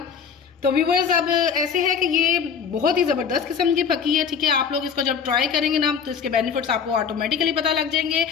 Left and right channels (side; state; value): right; quieter; 6.7 dB